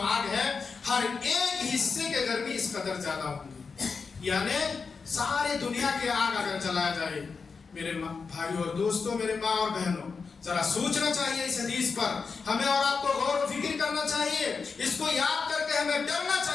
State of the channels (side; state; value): right; quieter; 5.0 dB